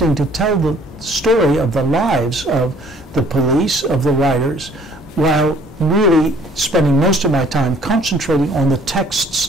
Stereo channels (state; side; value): normal; both; correlation 0.57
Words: to tell the story of the lives of the police, of the writers, while really spending most of my time concentrating on the